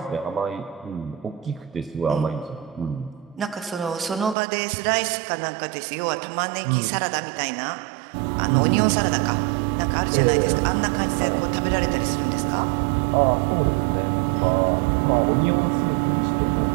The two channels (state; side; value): drops out; left; at 4.4 s